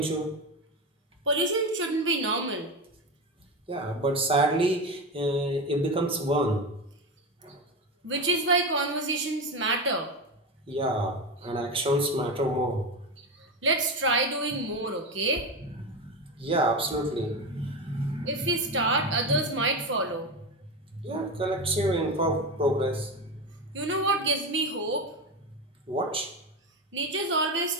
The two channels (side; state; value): both; normal; correlation 0.18